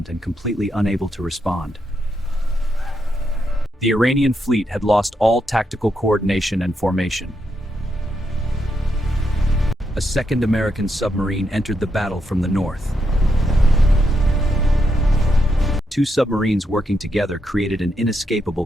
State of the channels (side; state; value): both; normal; correlation 0.81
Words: and completely unable to respond. The Iranian fleet had lost all tactical coordination and formation. A second American submarine entered the battle from the north. 2 submarines working together created an inescapable